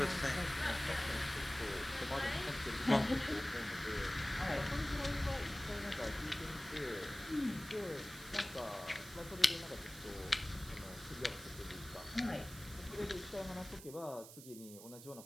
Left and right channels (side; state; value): right; noise; hiss, 15 dB below the sound